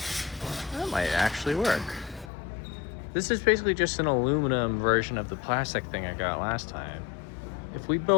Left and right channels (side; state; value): right; drops out; at 2.3 s